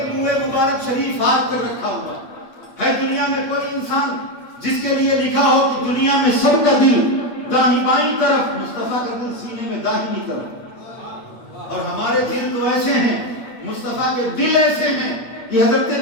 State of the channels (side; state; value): right; late; 8.7 ms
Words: منہ مبارک شریف ہاتھ پر رکھا ہوا ہے۔ دنیا میں کوئی انسان جس کے لیے لکھا ہو کہ دنیا میں سب کا دل داہنی بائیں طرف، مصطفیٰ کا دل سینے میں داہنی طرف، اور ہمارے دل تو ایسے ہیں، مصطفیٰ کے دل ایسے ہیں کہ حضرت